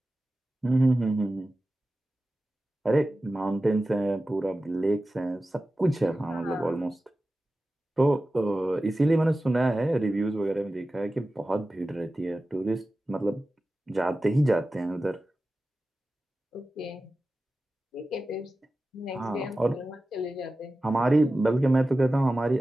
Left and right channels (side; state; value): both; normal; correlation 0.95